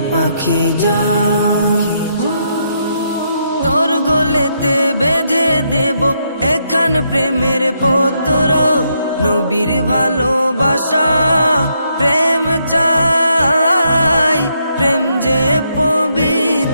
পাখি যা তোর গলেতে বেঁধে দেব এখান প্রেমের পত্র, নবীর ভালোবাসা প্রেম চাই, প্রেম যে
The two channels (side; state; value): both; inverted; correlation -0.77